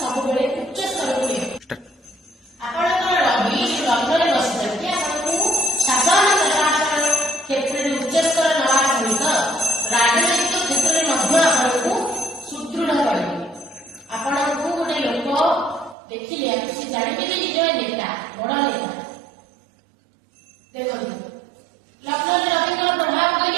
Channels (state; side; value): drops out; left; at 16.0 s